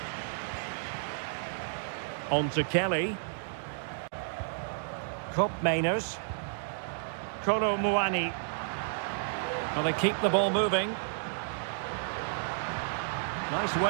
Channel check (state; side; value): silent; left; digital silence